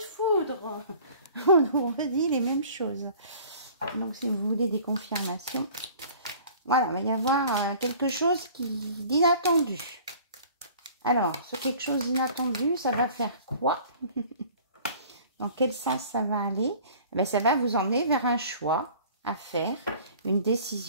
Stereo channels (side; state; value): both; inverted; correlation -0.49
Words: foudre. On nous redit les mêmes choses. Donc, si vous voulez des confirmations... Voilà, il va y avoir quelque chose d'inattendu. Alors, ce quelque chose d'inattendu, ça va faire quoi? Dans quel sens ça va aller? Eh bien, ça va vous emmener vers un choix à faire, une